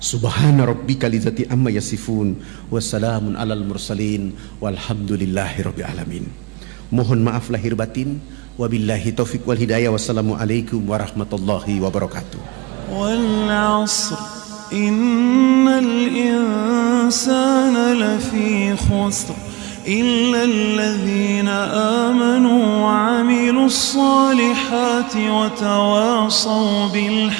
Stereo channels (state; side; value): quieter; left; 23.7 dB